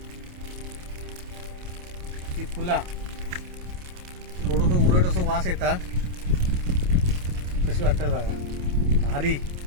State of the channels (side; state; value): left; late; 28 ms